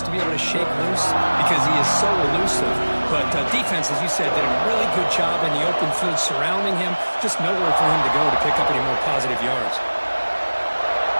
to be able to shake loose because he is so elusive. But defense, as you said, did a really good job in the open field surrounding him. Just nowhere for him to go to pick up any more positive yards.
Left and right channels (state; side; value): inverted; both; correlation -1.00